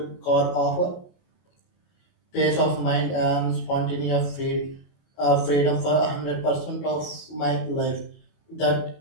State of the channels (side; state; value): right; late; 28 ms